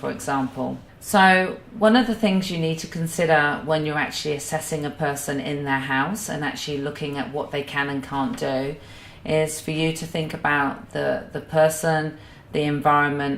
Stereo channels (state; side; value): identical; both; correlation 1.00